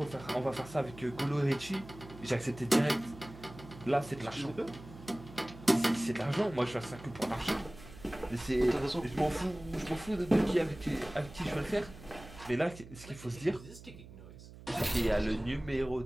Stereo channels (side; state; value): right; noise; hum, 17 dB below the sound